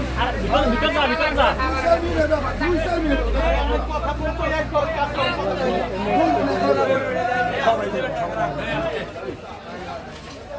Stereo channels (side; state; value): both; identical; correlation 1.00